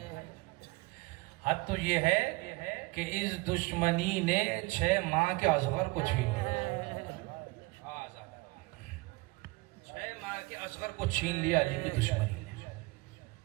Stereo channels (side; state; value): left; quieter; 24.3 dB